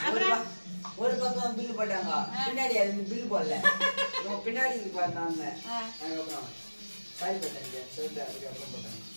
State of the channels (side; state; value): both; inverted; correlation -1.00